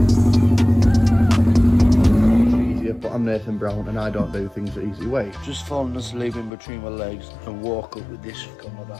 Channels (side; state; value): right; drops out; at 6.5 s